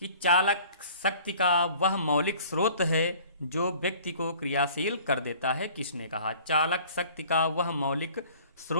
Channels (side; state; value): both; inverted; correlation -0.50